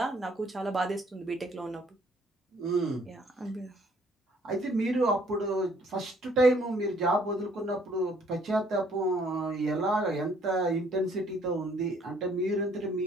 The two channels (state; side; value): normal; both; correlation 0.62